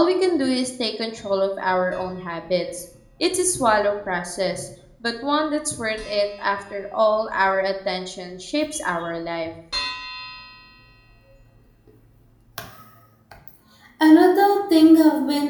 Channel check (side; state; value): both; identical; correlation 1.00